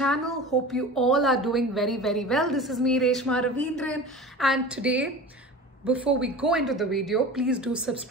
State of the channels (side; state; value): both; normal; correlation 0.35